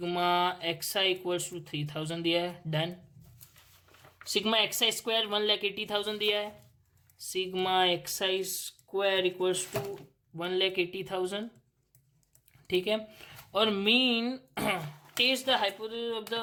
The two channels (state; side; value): identical; both; correlation 1.00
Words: x i equals to 3000 दिया है, डन। सिग्मा एक्स आई स्क्वायर 1,80,000 दिया है, sigma x I square equals to 1,80,000, ठीक है। और mean test the hypothesis of